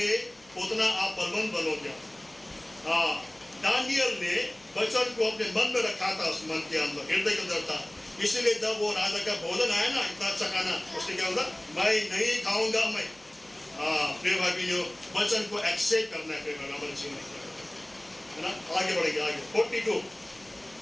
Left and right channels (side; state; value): left; noise; hum, 30 dB below the sound